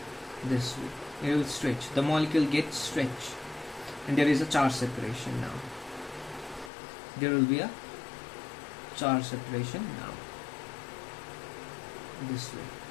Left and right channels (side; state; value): right; drops out; at 6.7 s